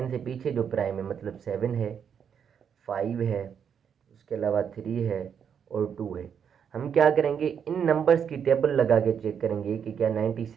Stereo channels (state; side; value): quieter; left; 7.7 dB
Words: से पीछे जो प्राइम है मतलब 7 है, 5 है, उसके अलावा 3 है और 2 है। हम क्या करेंगे, इन नंबर्स की टेबल लगा के चेक करेंगे कि क्या